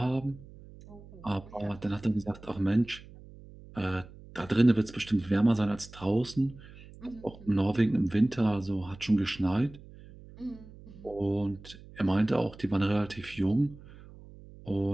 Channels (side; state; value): right; noise; hum, 19 dB below the sound